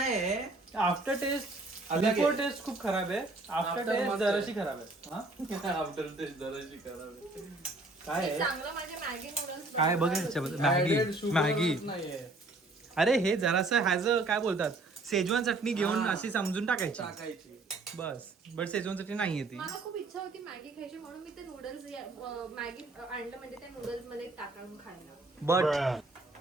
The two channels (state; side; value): quieter; left; 3.0 dB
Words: आफ्टर टेस्ट अलग बिफोर आहे. टेस्ट खूप खराब आहे. आफ्टर After टेस्ट मस्त जराशी खराब आहे. हा? आफ्टर टेस्ट जराशी खराब काय मी आहे चांगलं माझे मॅगी नूडल्स काय बघ ह्याच्यामध्ये? मॅगी मॅगी नाहीये अरे हे जरासं ह्याच काय बोलतात शेजवान चटणी घेऊन हा. अशी समजून टाकायची टाकायची. बस. बट शेजवान चटणी नाहीये ती. मला खूप इच्छा होती मॅगी खायची म्हणून मी ते नूडल्स मॅगी आणलं म्हणजे त्या नूडल्स मध्ये टाकून खायला. बट